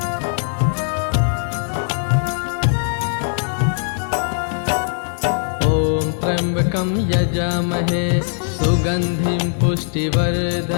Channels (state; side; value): silent; right; digital silence